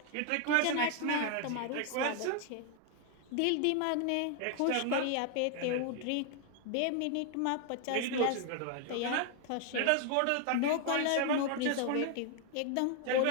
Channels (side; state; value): both; different; correlation 0.00